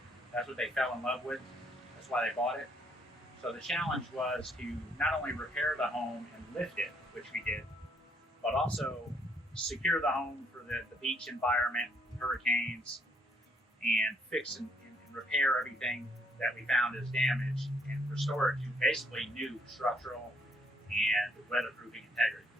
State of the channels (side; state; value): both; normal; correlation 0.68